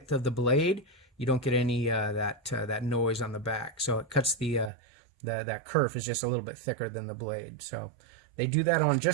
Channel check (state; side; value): drops out; left; at 4.7 s